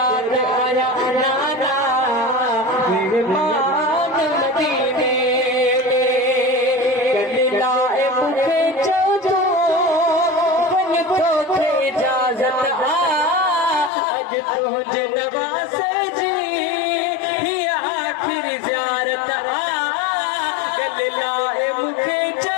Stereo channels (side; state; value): right; drops out; at 13.9 s